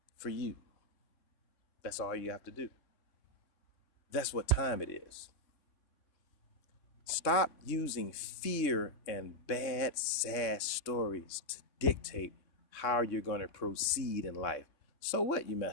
for you. That's all you have to do. That's what time it is. Stop using fear and bad, sad stories to dictate how you're going to proceed in life. So what, you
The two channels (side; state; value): right; late; 3.6 ms